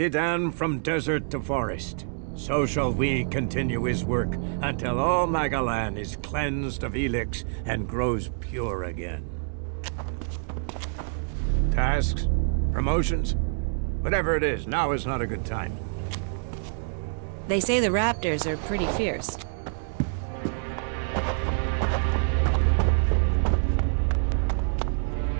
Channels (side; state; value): left; silent; 60 dB below the other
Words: on from desert to forest, so shall we continue his work until all Magalan is cleansed of ELEX and grows pure again. Tasks? Promotions? Whatever it is, now is not a good time. They say the raptors are pretty fierce.